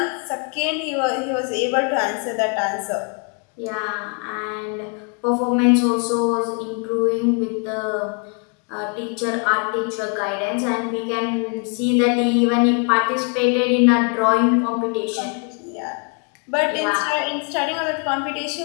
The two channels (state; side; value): quieter; right; 37.9 dB